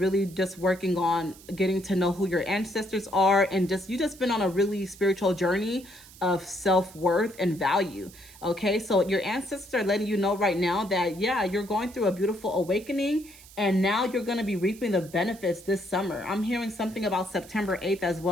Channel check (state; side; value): noise; right; hiss, 21 dB below the sound